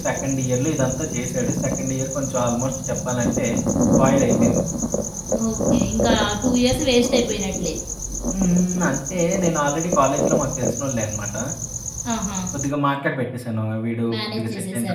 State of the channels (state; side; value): identical; both; correlation 1.00